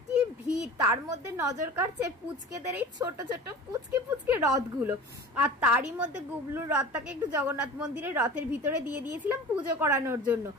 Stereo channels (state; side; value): normal; both; correlation 0.38